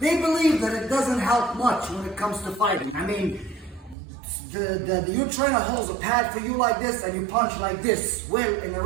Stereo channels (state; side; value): drops out; left; at 4.0 s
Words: believe that it doesn't help much when it comes to fighting. I mean, your trainer holds a pad for you like this and you punch like this. Well, in a